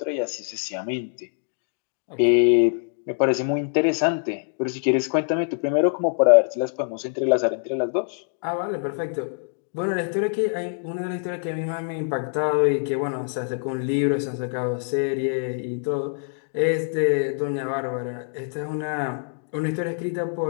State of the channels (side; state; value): right; silent; digital silence